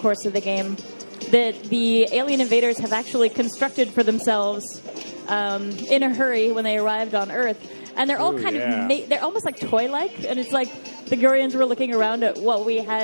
of the game that the alien invaders have actually constructed for themselves in a hurry when they arrived on Earth. And they're all they're almost like toy-like. And it's like the Gurians were looking around at what we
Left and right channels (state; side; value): inverted; both; correlation -1.00